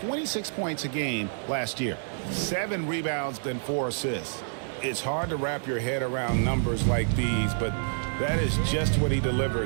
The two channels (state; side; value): silent; left; digital silence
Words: points a game last year, 7 rebounds and 4 assists. It's hard to wrap your head around numbers like these, but that is just what he